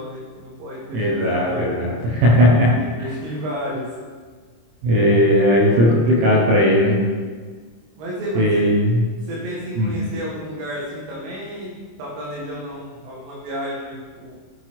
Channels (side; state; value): left; late; 26 ms